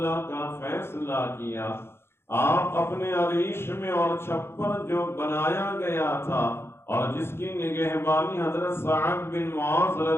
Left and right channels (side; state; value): right; late; 0.12 ms